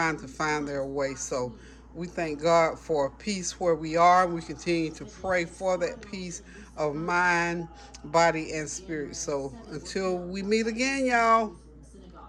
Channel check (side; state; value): both; identical; correlation 1.00